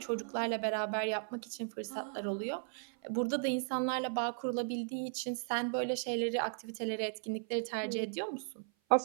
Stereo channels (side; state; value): left; silent; 54 dB below the other